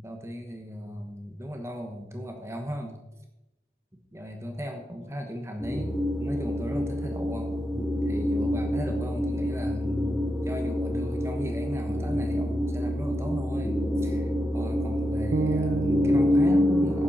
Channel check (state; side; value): normal; both; correlation 0.87